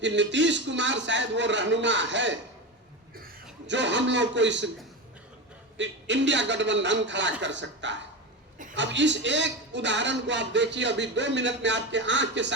कि नीतीश कुमार शायद वो रहनुमा है जो हम लोग को इस इंडिया गठबंधन खड़ा कर सकता है। अब इस एक उदाहरण को आप देखिए, अभी 2 मिनट में आपके आंख के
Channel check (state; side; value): normal; both; correlation 0.21